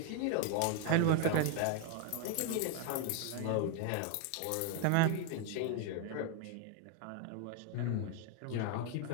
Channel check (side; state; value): both; different; correlation 0.01